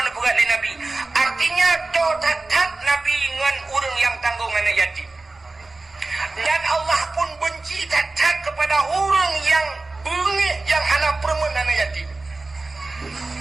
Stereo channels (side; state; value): left; quieter; 3.3 dB